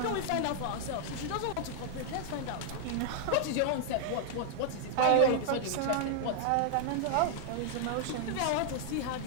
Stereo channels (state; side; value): different; both; correlation 0.00